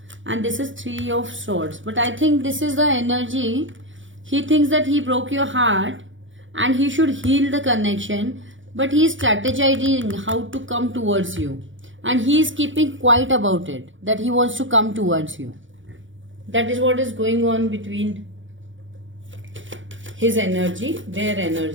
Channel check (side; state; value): left; late; 0.56 ms